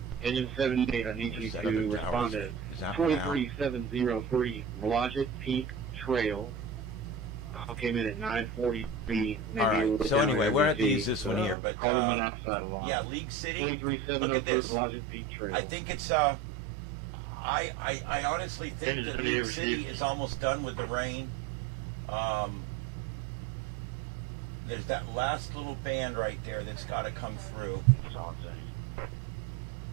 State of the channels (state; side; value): drops out; left; at 11.6 s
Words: Engine 78, I need you to respond to 23703 Blodgett Peak Trail, came in at 9:43. All right. So anyway, we're going to have to use this one here. But, yeah, League City, look at this. I think it's, I honestly think that League City is almost done with the rain. There's that last little band right there that's got to come through.